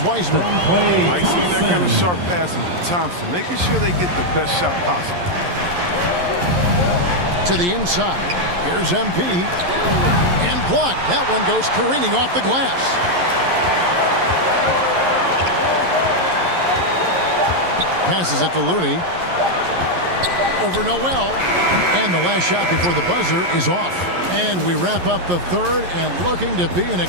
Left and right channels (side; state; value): left; late; 11 ms